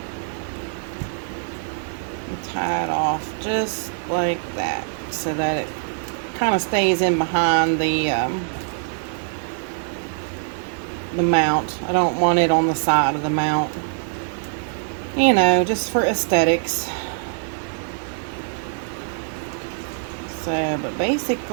Tie it off just like that so that it kind of stays in behind the mount. I don't want it on the side of the mount, you know, just for aesthetics. So, but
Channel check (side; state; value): left; silent; digital silence